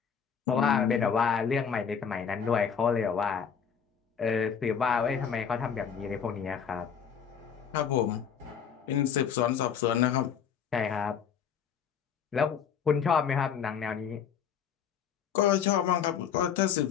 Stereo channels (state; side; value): quieter; right; 7.4 dB